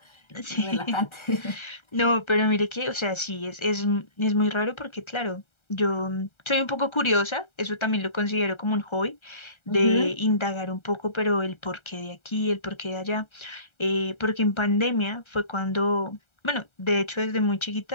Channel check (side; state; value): right; late; 1.3 ms